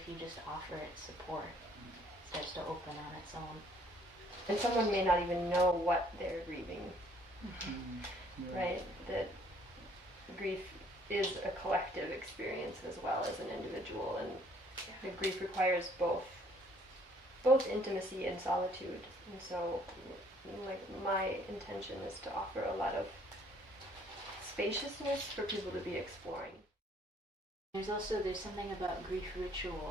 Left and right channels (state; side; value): normal; both; correlation 0.61